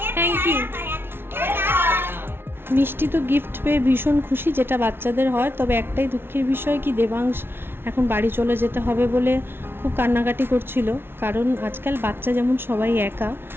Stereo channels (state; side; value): late; left; 0.11 ms